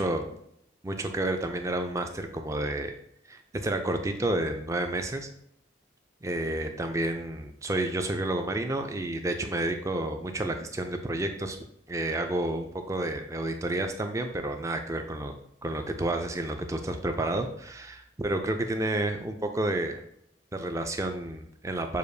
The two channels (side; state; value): both; normal; correlation 0.57